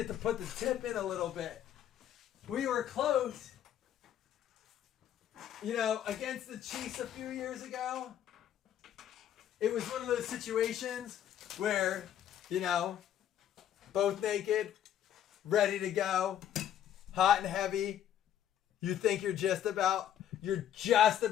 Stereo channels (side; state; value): right; quieter; 10.6 dB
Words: to put the tip in a little bit. We were close. You know, against the Chiefs a few years ago, it was one of those situations where, you know, both naked, ready to go, hot and heavy. You think you're just about